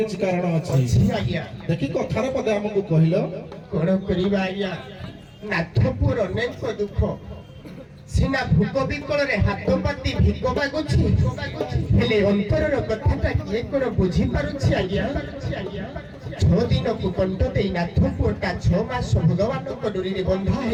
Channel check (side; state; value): both; identical; correlation 1.00